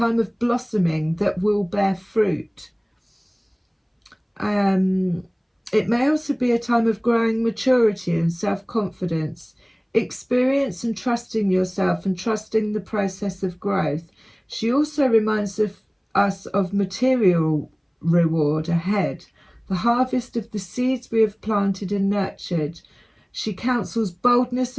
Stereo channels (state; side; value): identical; both; correlation 1.00